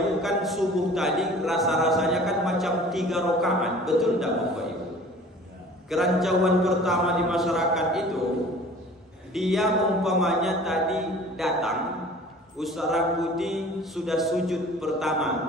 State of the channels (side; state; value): both; normal; correlation 0.46